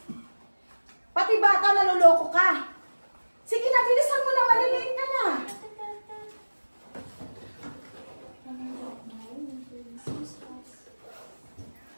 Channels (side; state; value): both; inverted; correlation -1.00